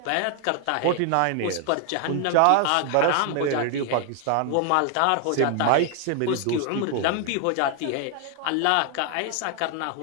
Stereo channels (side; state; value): both; different; correlation 0.00